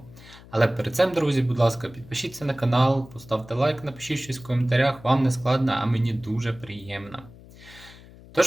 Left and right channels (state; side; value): noise; left; hum, 21 dB below the sound